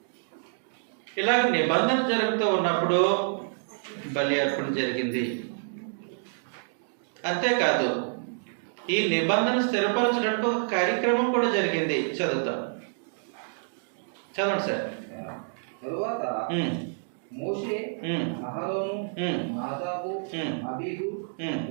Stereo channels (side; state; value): left; silent; digital silence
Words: ఇలాగ నిబంధన జరుగుతూ ఉన్నప్పుడు బలి అర్పణ జరిగింది. అంతేకాదు, ఈ నిబంధన స్థిరపరచడానికి ఒక కార్యక్రమం కూడా జరిగింది. చదువుతాం, చదవండి సార్. తరువాత మోషే, అహరోను, నాదాబు, అబీహు